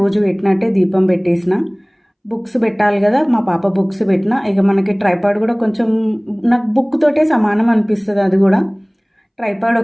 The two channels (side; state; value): both; identical; correlation 1.00